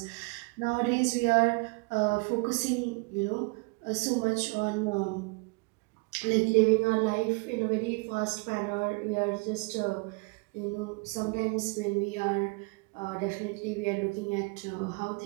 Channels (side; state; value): left; quieter; 29.0 dB